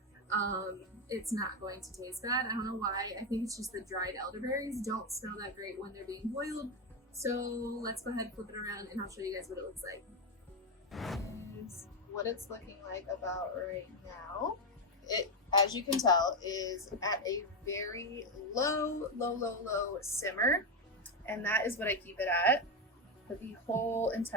It's not going to taste bad. I don't know why. I think it's just the dried elderberries don't smell that great when they're being boiled. So let's go ahead and flip it around and I'll show you guys what it looks like. Here's what it's looking like about right now. It, as you can tell, is at a very low simmer. And that is what I keep it at for the whole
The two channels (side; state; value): both; normal; correlation 0.08